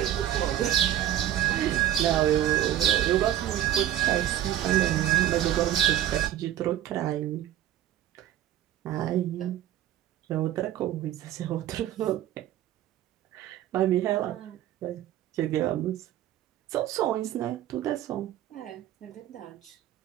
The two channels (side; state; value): left; quieter; 12.3 dB